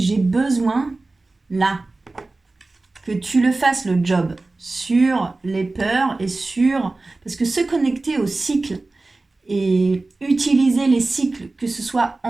besoin, là, que tu le fasses le job sur les peurs et sur... Parce que se connecter au cycle et utiliser les cycles, que ce soit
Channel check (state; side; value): quieter; left; 3.2 dB